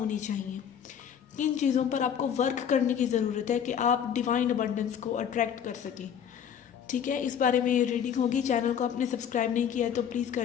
चाहिए। किन चीज़ों पर आपको वर्क करने की ज़रूरत है कि आप डिवाइन अबंडेंस को अट्रैक्ट कर सकें। ठीक है, इस बारे में ये रीडिंग होगी। चैनल को आपने सब्सक्राइब नहीं किया है तो प्लीज़ कर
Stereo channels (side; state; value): right; quieter; 8.5 dB